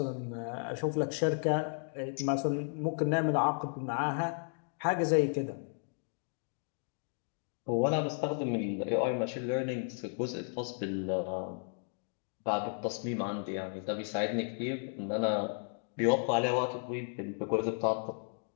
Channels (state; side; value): silent; right; 55 dB below the other